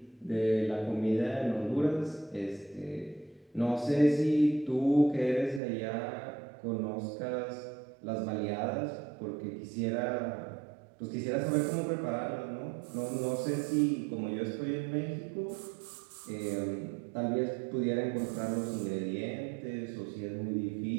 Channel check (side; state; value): left; drops out; at 5.6 s